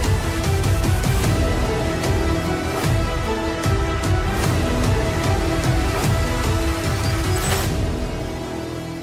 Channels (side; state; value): both; identical; correlation 1.00